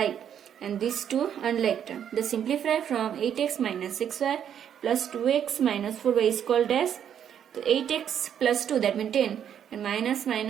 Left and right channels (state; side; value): quieter; left; 9.1 dB